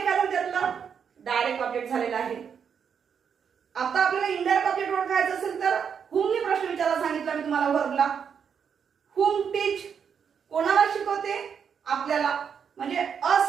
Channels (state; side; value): quieter; left; 7.2 dB